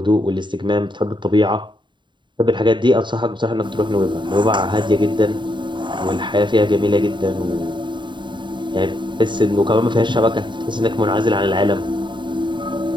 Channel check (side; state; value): left; late; 0.23 ms